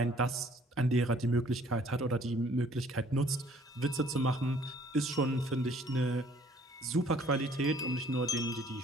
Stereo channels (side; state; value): both; normal; correlation 0.58